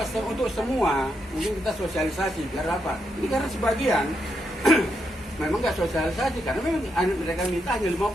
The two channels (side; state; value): both; normal; correlation 0.81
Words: Kalau untuk semua, mungkin kita sosialisasi. Biar apa? Ini karena sebagian memang nggak sosialisasi. Karena memang mereka minta hanya